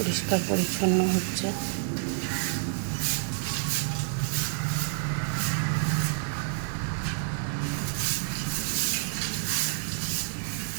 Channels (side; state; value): left; silent; 59 dB below the other